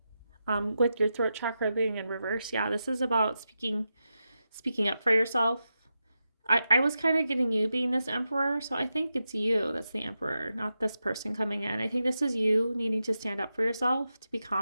With your throat chakra being in reverse, yeah, this is about speaking up for yourself. I was kind of getting you being this Emperor, so I think it's you that's the Emperor, not this person coming in. I think this is you needing to stand up for yourself, to be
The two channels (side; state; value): both; inverted; correlation -0.89